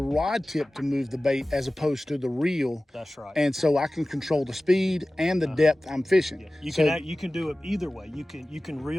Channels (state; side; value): normal; both; correlation 0.96